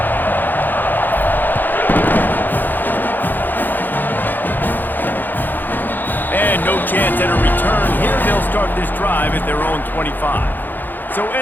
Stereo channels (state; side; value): late; right; 0.088 ms